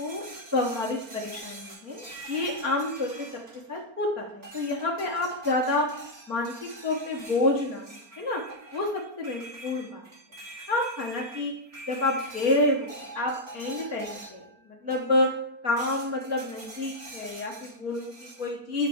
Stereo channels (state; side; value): late; left; 4.3 ms